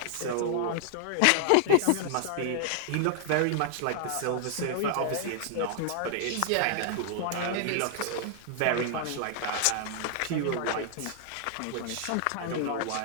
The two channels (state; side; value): different; both; correlation 0.00